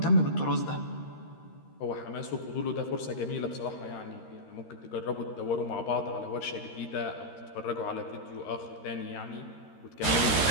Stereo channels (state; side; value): late; right; 13 ms